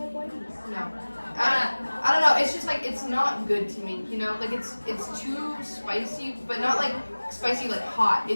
whiteys? No. I don't know. It's just like it's not good to me. You know, like it's too spicy, but not like spicy like hot.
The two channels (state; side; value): inverted; both; correlation -1.00